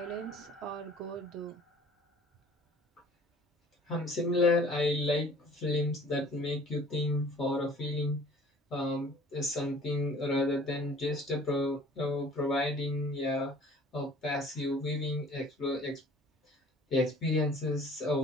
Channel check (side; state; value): both; normal; correlation 0.51